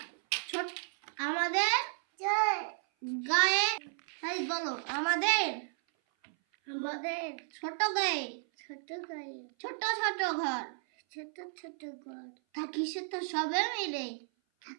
ছোট আমাদের জয় গায়ে তাই বলো আমাদের আমাদের ছোট গায়ে ছোট গায়ে ছোট ছোট ঘর ছোট ছোট ঘর থাকি সে তো সবে মিলে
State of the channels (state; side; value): silent; left; 55 dB below the other